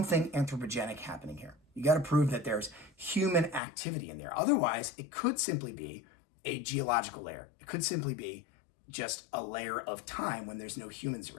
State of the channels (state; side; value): drops out; right; at 3.6 s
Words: anthropogenic happening here. You got to prove that there's human activity in there. Otherwise, it could simply be a geological layer. It could simply be just a layer of time when there's no humans